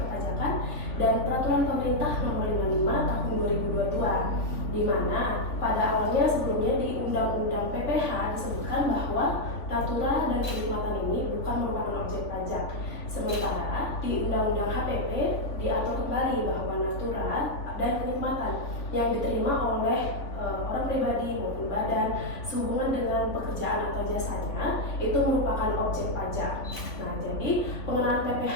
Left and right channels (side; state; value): right; late; 3.5 ms